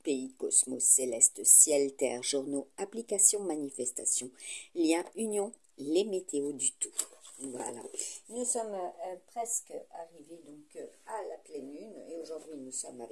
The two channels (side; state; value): both; identical; correlation 1.00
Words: pays, cosmos, céleste, ciel, terre, journaux, applications, manifestations, liens, union, les météos du tout. Voilà, nous sommes presque arrivés donc à la pleine lune et aujourd'hui nous sommes